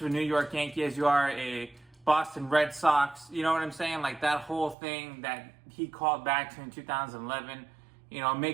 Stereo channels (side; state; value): left; drops out; at 4.8 s